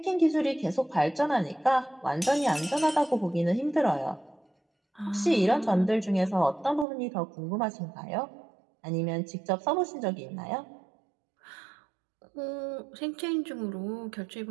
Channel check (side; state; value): left; drops out; at 6.9 s